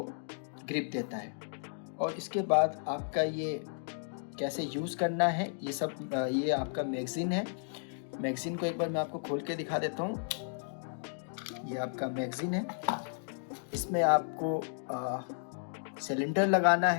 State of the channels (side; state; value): right; silent; digital silence